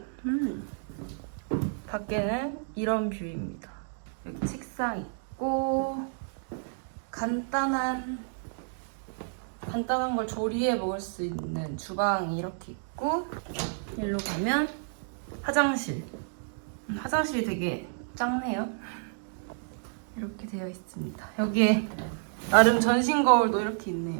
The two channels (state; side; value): silent; left; digital silence